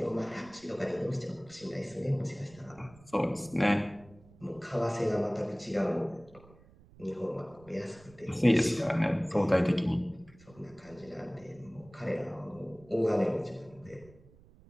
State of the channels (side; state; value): right; noise; rumble, 24 dB below the sound